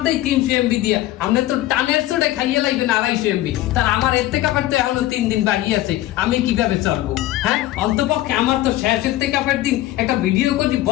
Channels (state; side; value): quieter; right; 15.4 dB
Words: দেই 300 MB দিয়ে, আমরা তো টানের চড়ে খাইয়ে লাগবেন 250 MB। তার আমার এতে কাপের তো এখনো 3 দিন বাকি আছে, আমি কিভাবে চলবো? হ্যাঁ, অন্তপক্ষে আমার তো শেষ এতে কাপের দিন একটা ভিডিও করে